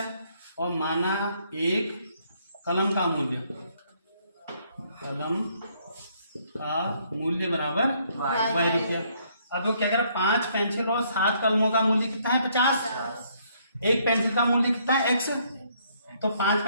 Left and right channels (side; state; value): both; inverted; correlation -0.68